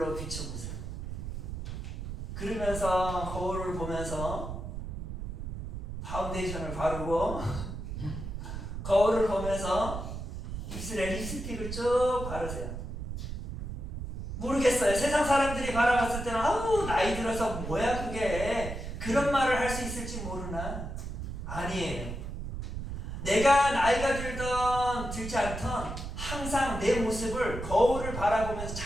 비춰보세요. 그러면서 거울을 보면서 파운데이션을 바르고 거울을 보면서 입술에 립스틱을 쭉 바르세요. 모르겠어요. 세상 사람들이 바라봤을 때는 아우 나이 들어서 뭐야 그게, 그런 말을 할 수 있을지 모르나? 아니에요. 내가 나이가 들던 들지 않던 항상 내 모습을 거울을 바라보면서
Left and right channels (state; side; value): noise; right; rumble, 6 dB below the sound